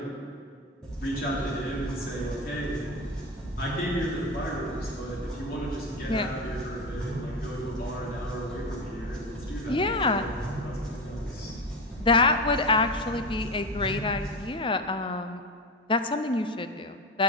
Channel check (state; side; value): normal; both; correlation 0.22